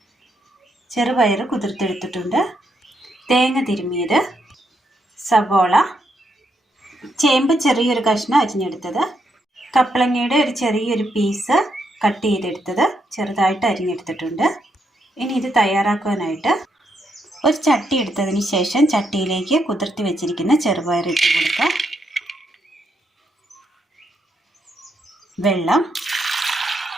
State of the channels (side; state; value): both; normal; correlation 0.78